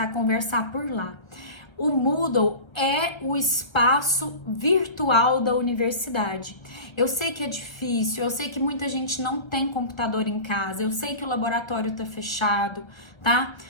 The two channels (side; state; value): right; late; 1.3 ms